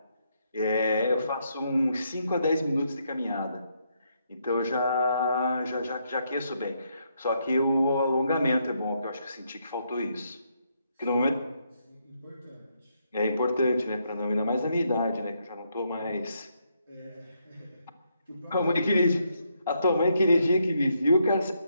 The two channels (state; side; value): inverted; both; correlation -0.77